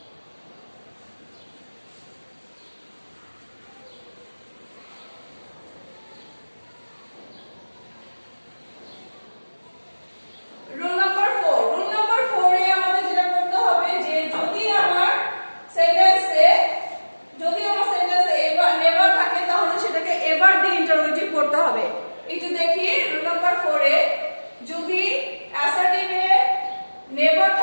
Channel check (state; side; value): inverted; both; correlation -1.00